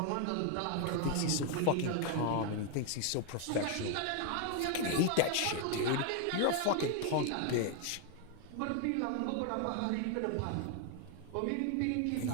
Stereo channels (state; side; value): different; both; correlation 0.01